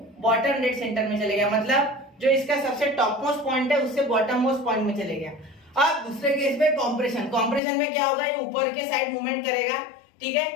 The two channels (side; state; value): right; drops out; at 7.6 s